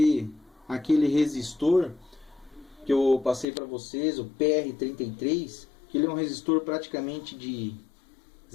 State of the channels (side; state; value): right; drops out; at 3.5 s